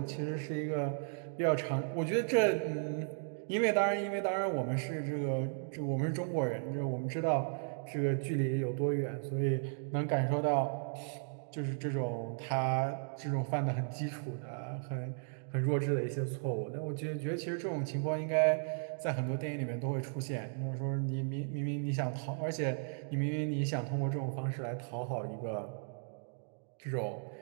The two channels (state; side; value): silent; left; digital silence